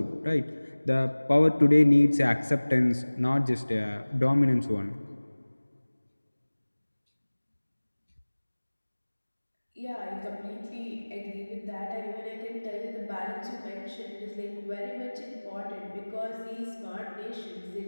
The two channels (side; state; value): both; inverted; correlation -1.00